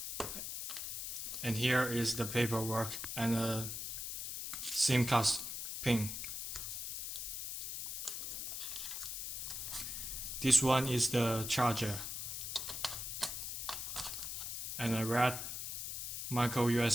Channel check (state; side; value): noise; left; hiss, 5 dB below the sound